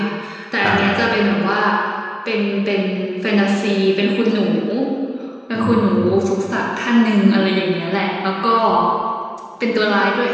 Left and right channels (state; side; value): identical; both; correlation 1.00